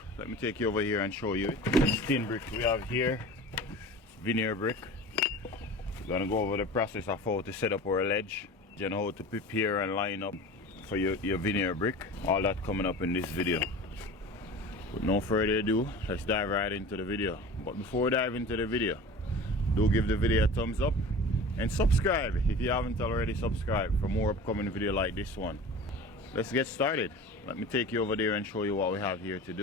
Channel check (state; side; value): normal; both; correlation 0.37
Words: Let me take you over here and show you it. This thin brick we have here, it's veneer brick. We're going to go over the process of how to set up our ledge, and how to prepare and line up for your veneer brick. All that coming up in this video. With no further ado, let's dive right into the video. But before we dive into the video, do give the video a thumbs up and subscribe if you haven't already subscribed for more upcoming video like this one. Let's get started. Let me take you over there and show you what we have here to